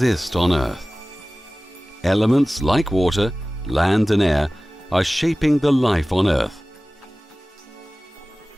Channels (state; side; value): normal; both; correlation 0.98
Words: on Earth. Elements like water, land and air are shaping the life on Earth.